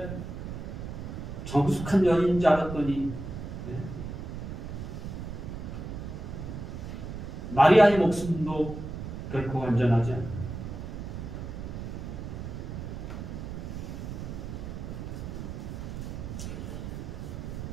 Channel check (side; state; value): right; noise; rumble, 7 dB below the sound